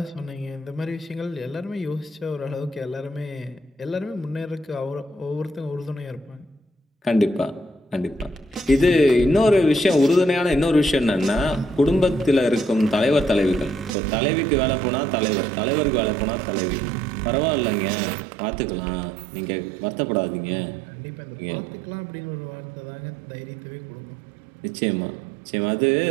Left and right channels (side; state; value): left; drops out; at 14.0 s